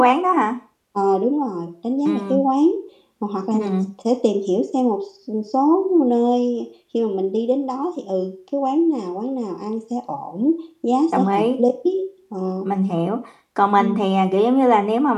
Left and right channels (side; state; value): both; identical; correlation 1.00